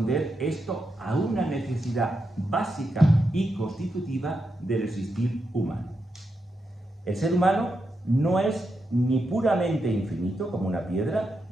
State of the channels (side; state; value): both; normal; correlation 0.85